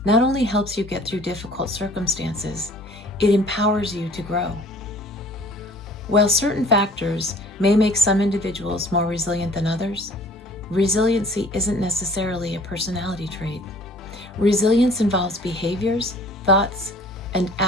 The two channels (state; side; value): normal; both; correlation 0.51